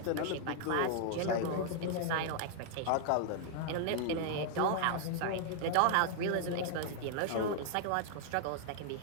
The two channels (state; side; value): different; both; correlation 0.00